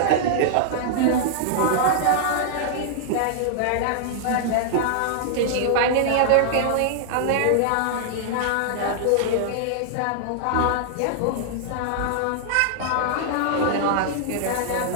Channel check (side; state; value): both; different; correlation -0.01